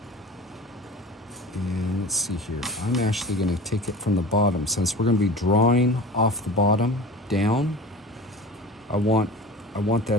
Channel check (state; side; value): normal; both; correlation 0.36